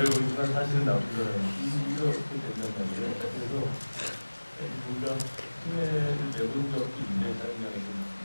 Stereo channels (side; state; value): both; inverted; correlation -1.00